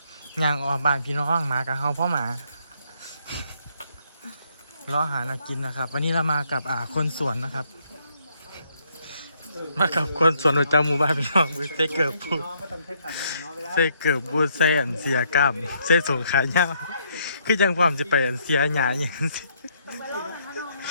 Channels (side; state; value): both; inverted; correlation -0.71